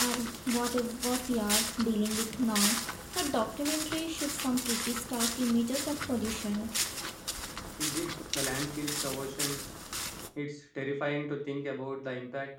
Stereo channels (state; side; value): identical; both; correlation 1.00